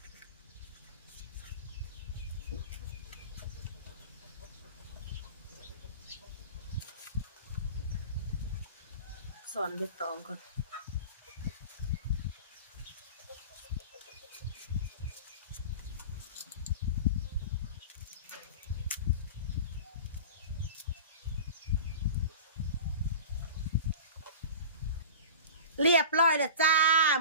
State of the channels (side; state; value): both; inverted; correlation -0.35